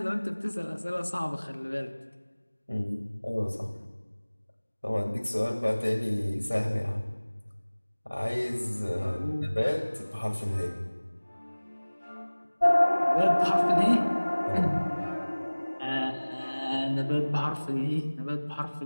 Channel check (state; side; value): inverted; both; correlation -1.00